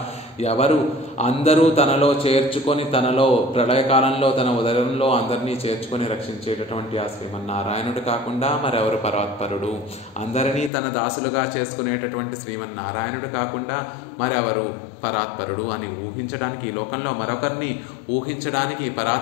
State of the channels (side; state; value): right; drops out; at 10.7 s